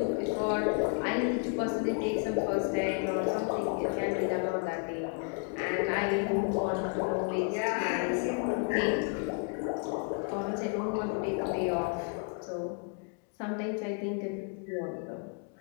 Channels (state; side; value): quieter; right; 37.9 dB